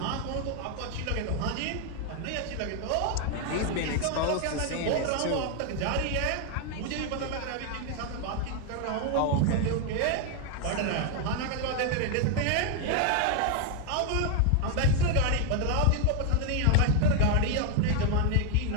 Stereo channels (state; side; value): different; both; correlation 0.01